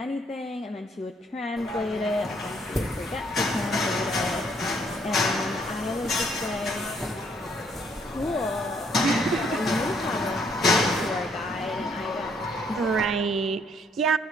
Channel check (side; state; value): both; normal; correlation 0.67